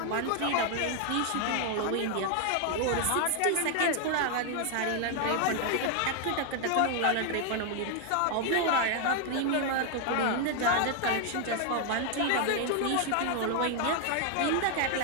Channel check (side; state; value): both; different; correlation 0.00